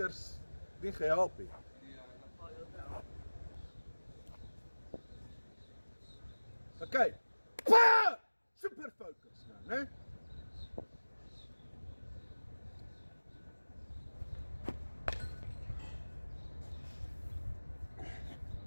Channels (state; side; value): inverted; both; correlation -1.00